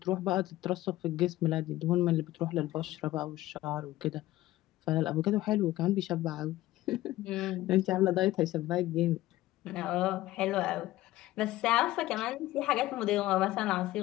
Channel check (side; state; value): right; quieter; 16.3 dB